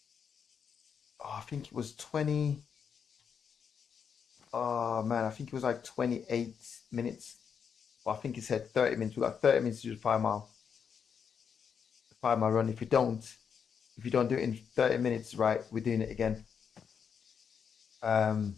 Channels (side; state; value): right; quieter; 7.0 dB